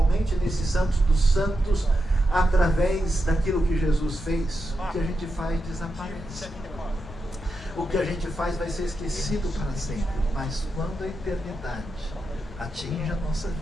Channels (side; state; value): both; normal; correlation 0.87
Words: nesse Santos dos Santos, através daquilo que Jesus fez, o que a gente faz desaparece. O que a gente faz vai ser esquecido para sempre. Mas quando a eternidade atinge a nossa